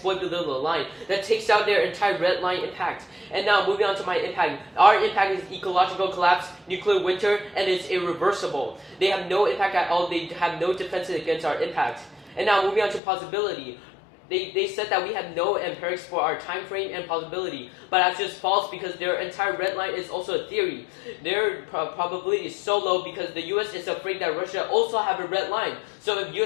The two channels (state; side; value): drops out; right; at 13.0 s